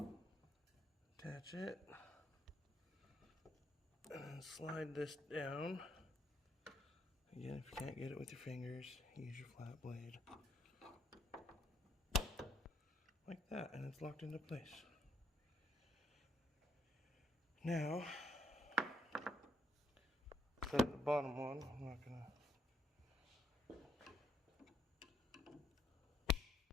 attach it, And then slide this down. Again, if you can't get it with your fingers, use your flat blade. Like that, and it's locked into place. Now, set the bottom one. I'm not gonna.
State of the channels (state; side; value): normal; both; correlation 0.72